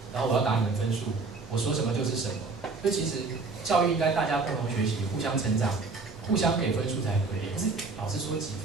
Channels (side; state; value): left; quieter; 4.0 dB